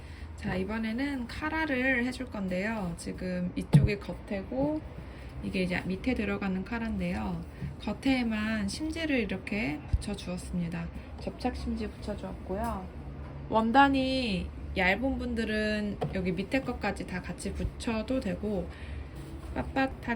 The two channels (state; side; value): identical; both; correlation 1.00